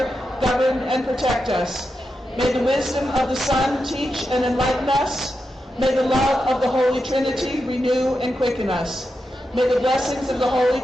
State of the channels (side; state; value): both; normal; correlation 0.88